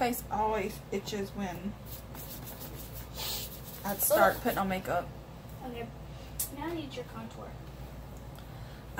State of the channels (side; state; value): both; identical; correlation 1.00